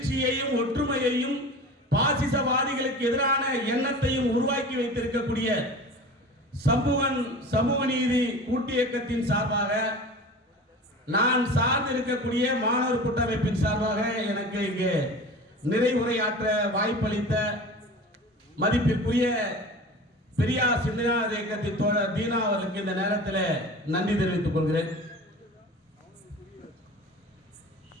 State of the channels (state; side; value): normal; both; correlation 0.36